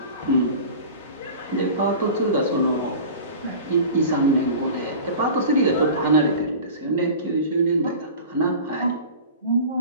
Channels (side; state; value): both; inverted; correlation -0.37